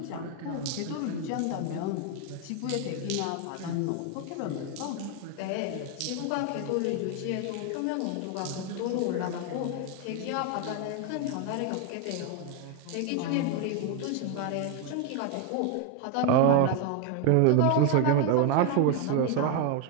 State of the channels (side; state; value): both; different; correlation 0.01